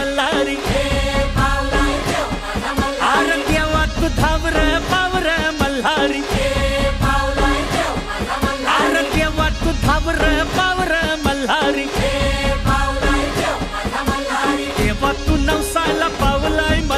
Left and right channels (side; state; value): both; identical; correlation 1.00